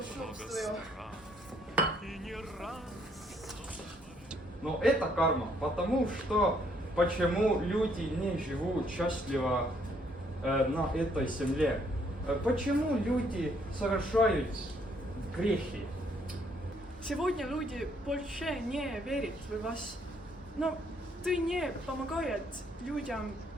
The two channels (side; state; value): both; normal; correlation 0.68